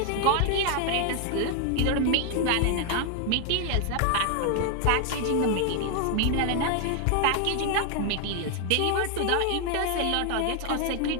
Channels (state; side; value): different; both; correlation 0.00